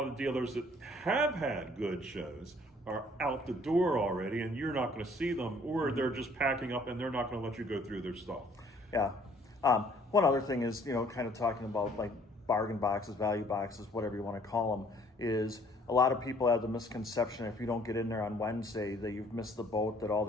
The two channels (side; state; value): both; normal; correlation 0.59